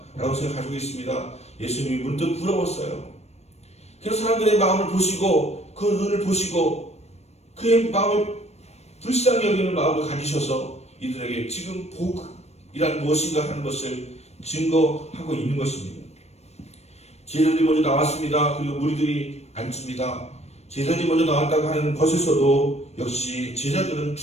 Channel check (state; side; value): late; right; 0.31 ms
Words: 생각 가지고 있습니다. 예수님이 문득 부러웠어요. 그래서 사람들의 마음을 보시고 그 눈을 보시고 그의 마음을 불쌍히 여기는 마음을 가지셔서 이들에게 지금 복이란 무엇인가 하는 것을 증거하고 있는 것입니다. 제자들이 먼저 나왔습니다. 그리고 무리들이 앉습니다. 제자들이 먼저 나왔다고 하는 것에서도 역시 제자들은